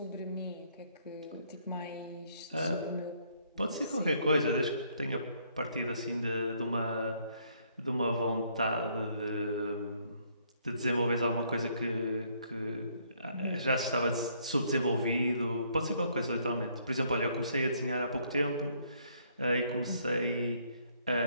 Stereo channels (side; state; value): both; inverted; correlation -0.67